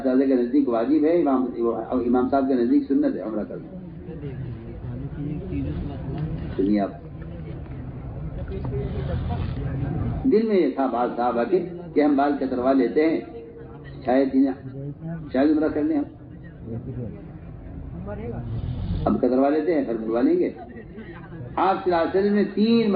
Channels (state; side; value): identical; both; correlation 1.00